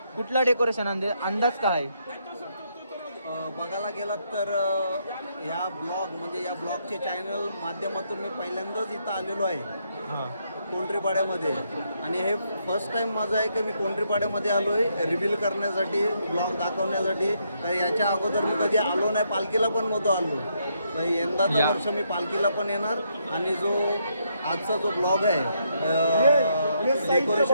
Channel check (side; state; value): both; inverted; correlation -0.75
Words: कुठला डेकोरेशन अंदाज काय? बघायला गेलात तर या ब्लॉगचे चॅनल माध्यमातून मी पहिल्यांदाच इथं आलेलो आहे कोंढरीपाड्यामध्ये. आणि हे फर्स्ट टाइम माझं आहे की मी कोंढरीपाड्यामध्ये आलो आहे रिव्हील करण्यासाठी, ब्लॉग दाखवण्यासाठी. तर याच्या अगोदर मी कधी आलो नाही, पालखीला पण नव्हतो आलो. यंदाचं वर्ष मी पालखीला पण येणार. आणि जो आजचा जो ब्लॉग आहे